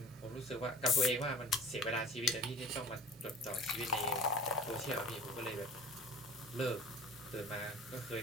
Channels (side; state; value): both; normal; correlation 0.44